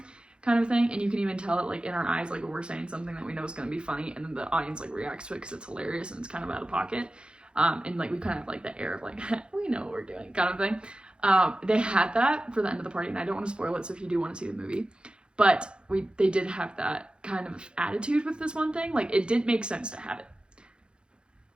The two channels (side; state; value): left; late; 0.053 ms